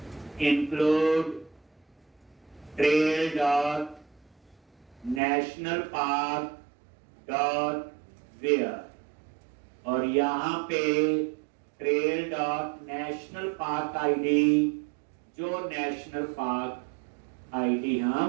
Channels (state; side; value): drops out; left; at 5.2 s